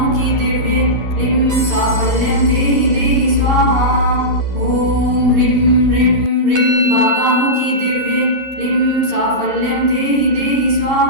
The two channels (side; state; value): left; late; 11 ms